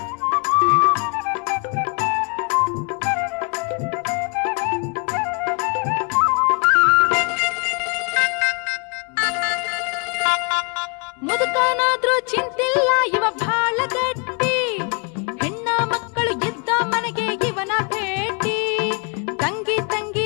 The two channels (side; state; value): right; quieter; 35.2 dB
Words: ಮುದುಕನಾದ್ರೂ ಚಿಂತಿಲ್ಲ ಇವ ಬಾಳ ಗಟ್ಟಿ ಹೆಣ್ಣ ಮಕ್ಕಳು ಇದ್ದ ಮನೆಗೆ ಇವನ ಭೇಟಿ ತಂಗಿ ತಂಗಿ